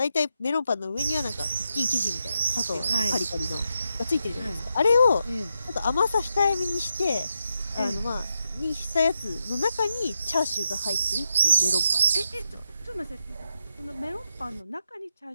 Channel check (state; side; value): inverted; both; correlation -0.85